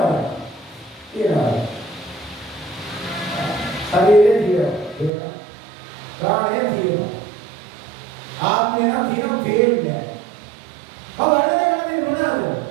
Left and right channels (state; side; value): drops out; left; at 5.1 s